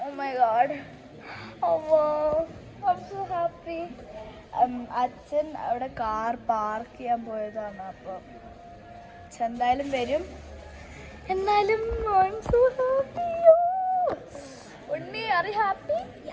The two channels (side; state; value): both; identical; correlation 1.00